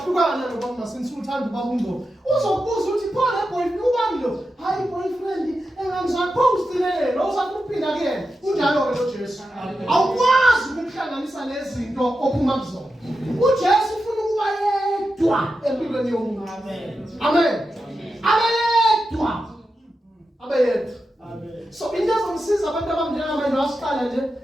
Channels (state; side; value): normal; both; correlation 0.90